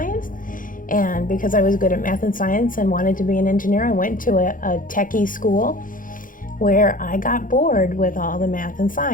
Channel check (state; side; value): late; right; 0.39 ms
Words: And because I was good at math and science and wanted to be an engineer, I went to a techie school where I got bored with all the math and